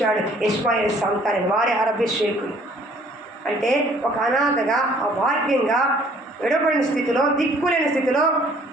ఇష్మాయేలు సంతానం, వారి అభిషేకులు. అంటే ఒక అనాథగా, అభాగ్యంగా, విడబడిన స్థితిలో, దిక్కులేని స్థితిలో,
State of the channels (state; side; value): normal; both; correlation 0.58